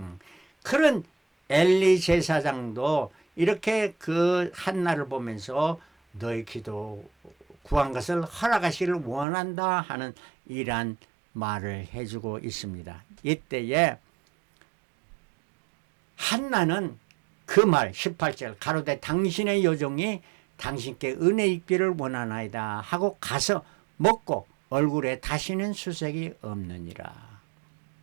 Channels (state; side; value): drops out; left; at 9.2 s